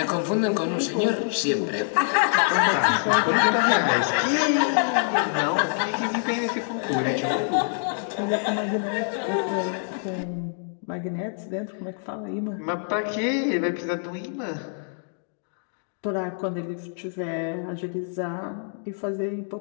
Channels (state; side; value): silent; right; digital silence